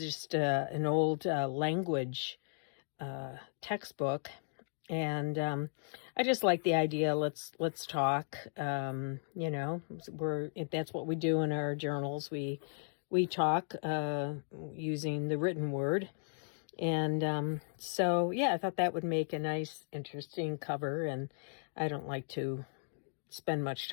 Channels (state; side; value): silent; right; digital silence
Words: an old language textbook, and I just like the idea. Let's talk. That's what we do in our journals. We talk using the written word. And so, yeah, I thought that would make a nice, interesting cover. And I don't like to spend much